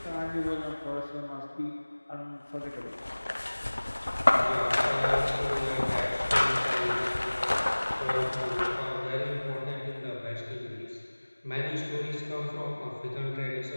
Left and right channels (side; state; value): both; inverted; correlation -1.00